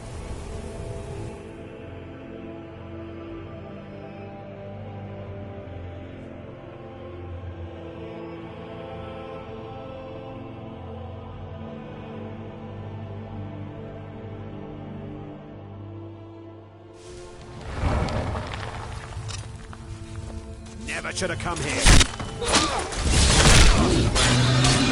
Never should have come here.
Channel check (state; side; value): identical; both; correlation 1.00